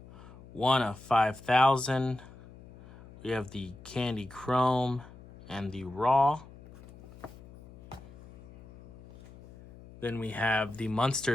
1 of 5,000. We have the Candy Chrome and the Raw. Then we have the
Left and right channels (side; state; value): left; noise; hum, 20 dB below the sound